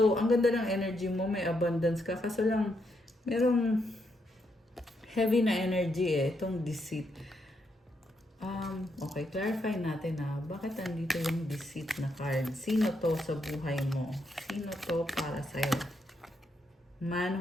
ang ganda ng energy mo. May abundance ka. Kaso lang, merong heavy na energy itong deceit. Okay, clarify natin bakit andito yung deceit na card? Sino to sa buhay mo? Sino to para sa'yo? Man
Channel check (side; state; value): both; normal; correlation 0.79